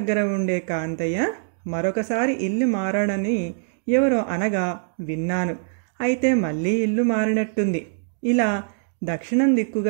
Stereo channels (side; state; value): left; silent; digital silence